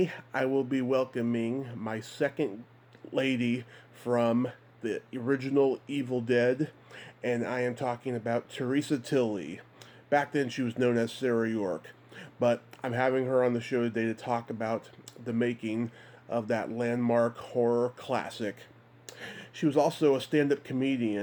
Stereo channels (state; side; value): identical; both; correlation 1.00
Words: I will be welcoming my second lady from the original Evil Dead, and I am talking about Theresa Tilly. Back then she was known as Sarah York, but I'm having her on the show today to talk about the making of that landmark horror classic. She was also a stand-up